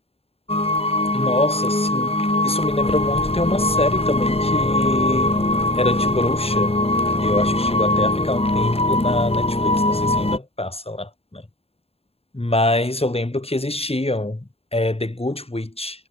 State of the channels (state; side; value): late; right; 0.29 ms